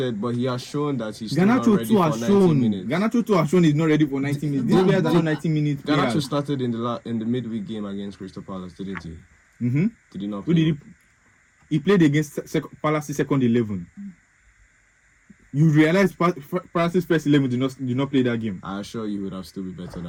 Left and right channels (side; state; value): both; identical; correlation 1.00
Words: but he has shown that he's still not Garnacho ready too for has 90 shown. minutes. Garnacho too has shown he's not ready for 90 minutes. These players are not 90 minutes. Garnacho players. started in the midweek game against Crystal Palace, didn't he? Did he not Who play? did he played against Palace's second 11. You realize Palace's first 11 did not play that game. I assure you, he would have still be better